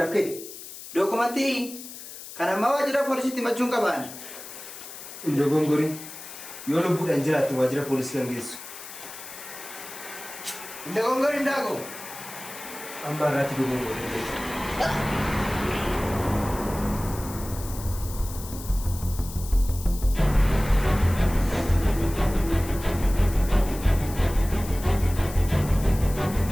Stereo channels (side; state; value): left; noise; hiss, 13 dB below the sound